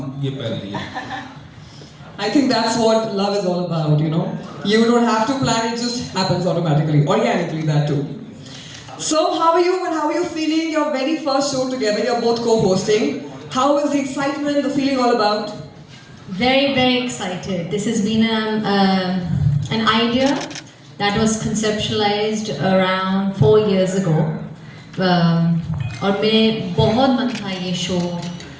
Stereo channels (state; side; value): identical; both; correlation 1.00